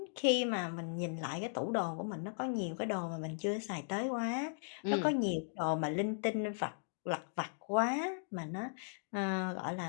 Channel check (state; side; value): silent; right; digital silence